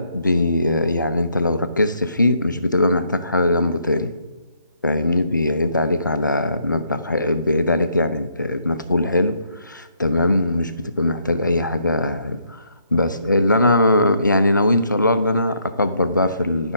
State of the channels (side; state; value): both; inverted; correlation -0.71